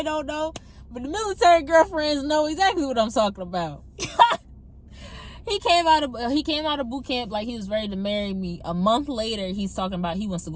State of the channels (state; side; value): identical; both; correlation 1.00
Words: don't know. But the military girlfriends know exactly what I'm talking about. He came out of boot camp like he was ready to marry me. A month later, he's talking about he wants to